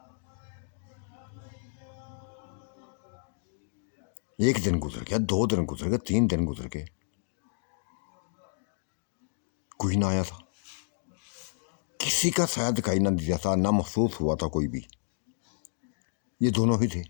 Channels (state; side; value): silent; right; digital silence